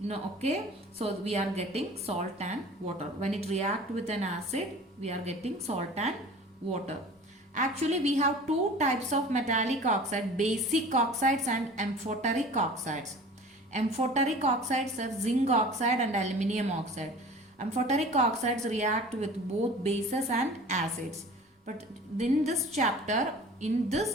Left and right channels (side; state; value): both; normal; correlation 0.42